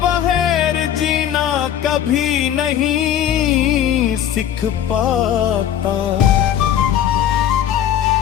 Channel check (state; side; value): quieter; right; 10.3 dB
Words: बगैर जीना कभी नहीं सीख पाता।